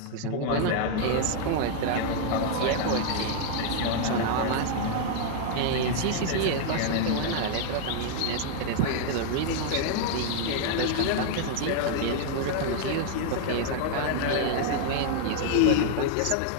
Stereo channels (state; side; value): different; both; correlation 0.00